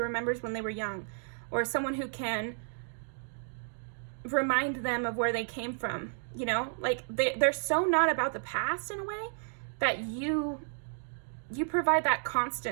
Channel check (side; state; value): left; silent; digital silence